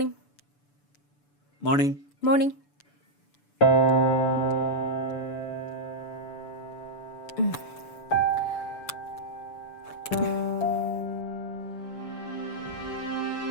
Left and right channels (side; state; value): right; late; 6.9 ms